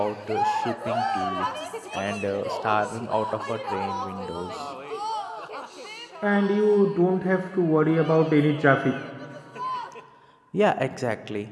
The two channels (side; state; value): both; identical; correlation 1.00